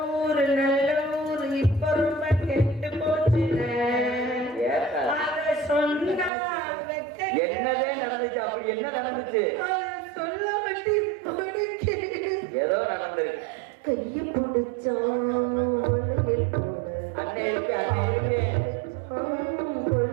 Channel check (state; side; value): drops out; left; at 6.3 s